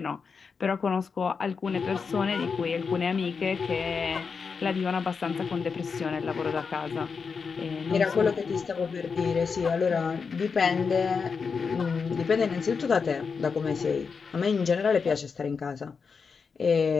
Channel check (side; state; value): right; quieter; 5.4 dB